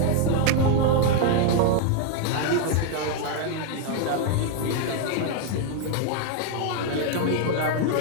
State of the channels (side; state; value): both; different; correlation 0.00